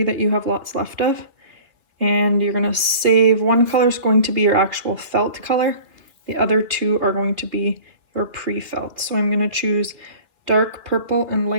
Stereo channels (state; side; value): late; left; 3.1 ms